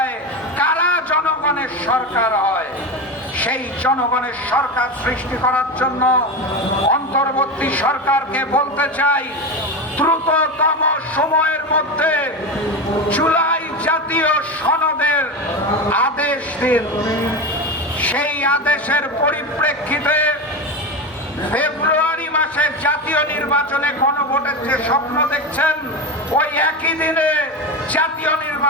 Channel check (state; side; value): normal; both; correlation 0.21